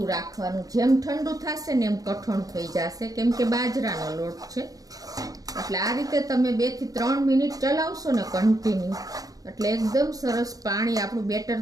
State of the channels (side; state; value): left; late; 0.17 ms